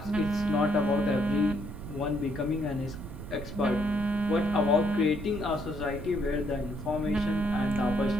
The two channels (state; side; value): noise; right; rumble, 10 dB below the sound